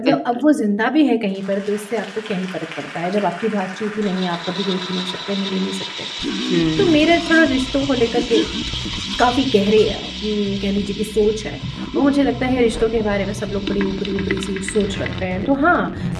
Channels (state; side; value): identical; both; correlation 1.00